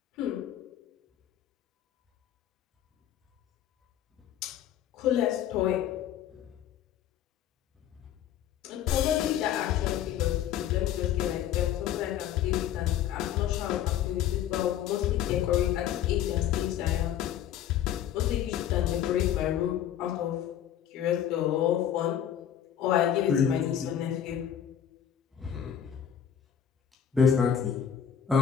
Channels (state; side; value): quieter; right; 9.9 dB